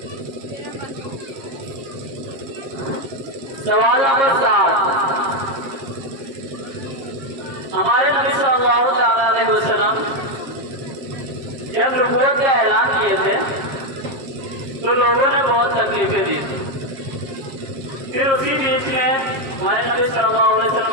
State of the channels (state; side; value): late; left; 7.5 ms